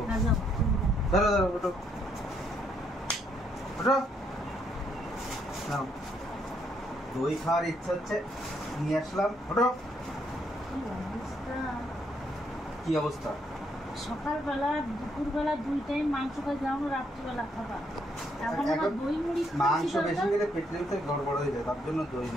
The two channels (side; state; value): both; normal; correlation 0.72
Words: না যাও। ধরো ধরো ওঠো ওঠো। নাও, দই খাওয়ার ইচ্ছা হচ্ছে, নিয়ে আসলাম। ওঠো। কি অবস্থা? সকালবেলা দুপুরবেলা দুই টাইম মাংস খাই, যাও রাত্রিবেলা খাবার, এখন আবার দই মুড়ি মাংস বেশি খেলে পেটের ভিতরে গড়বড় হয়ে যায়, তার জন্য দই